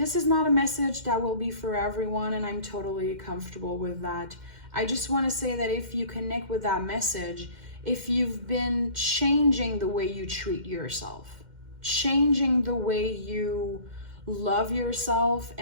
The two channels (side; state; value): left; late; 2.1 ms